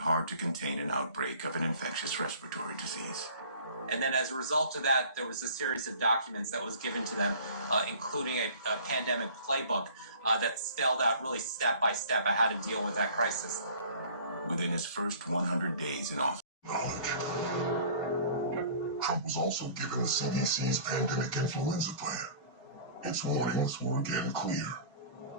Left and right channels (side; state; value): both; inverted; correlation -0.47